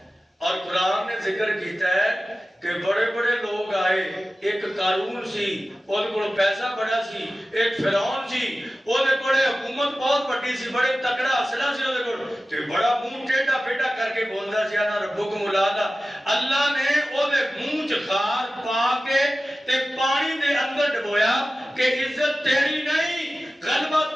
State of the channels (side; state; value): both; normal; correlation 0.95